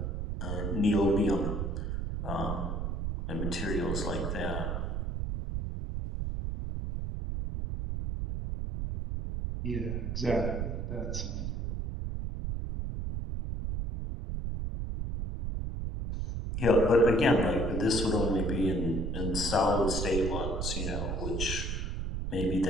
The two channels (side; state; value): right; noise; rumble, 2 dB below the sound